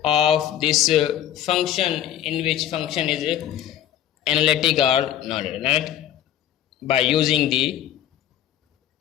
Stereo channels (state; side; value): quieter; right; 11.5 dB